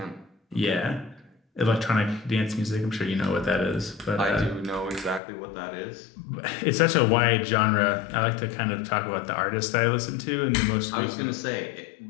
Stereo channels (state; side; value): drops out; right; at 5.2 s